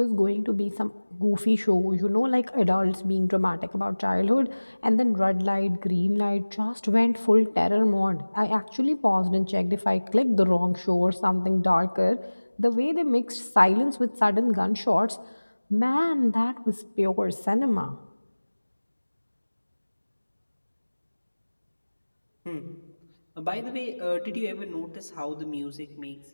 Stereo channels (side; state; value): both; inverted; correlation -1.00